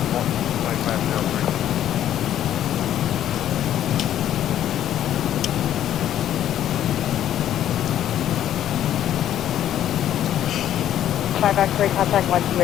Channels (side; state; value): right; quieter; 11.2 dB